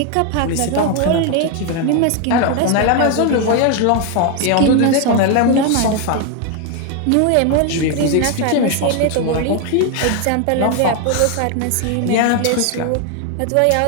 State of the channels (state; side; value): different; both; correlation 0.01